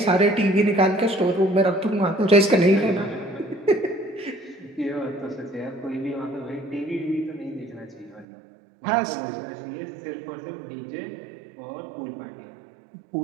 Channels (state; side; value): drops out; left; at 8.2 s